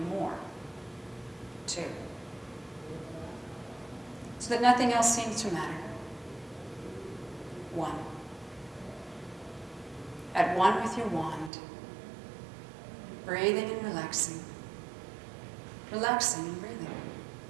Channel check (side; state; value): left; drops out; at 11.5 s